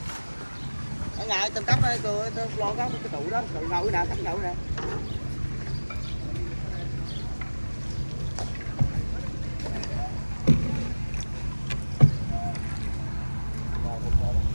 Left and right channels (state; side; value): inverted; both; correlation -1.00